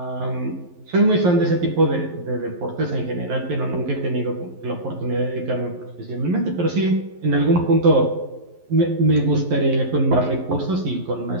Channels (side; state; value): left; late; 11 ms